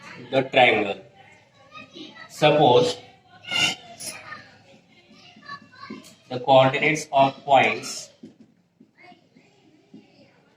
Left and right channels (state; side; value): identical; both; correlation 1.00